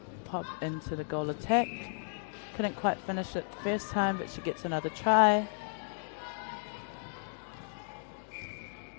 pop into the goal attack. Couldn't quite finish it the first time, but she gets another try.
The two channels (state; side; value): silent; right; digital silence